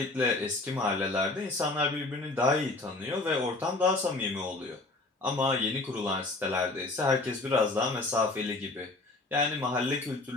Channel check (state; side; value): quieter; right; 3.1 dB